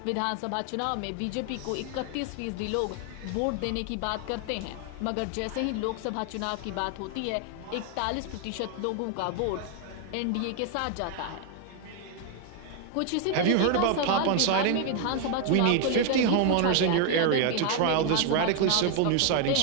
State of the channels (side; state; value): both; different; correlation 0.00